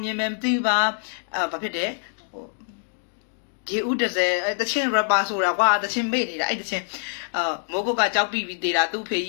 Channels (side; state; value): right; silent; digital silence